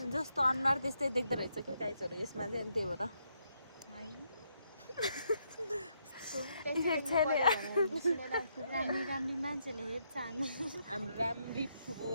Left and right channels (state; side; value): inverted; both; correlation -0.77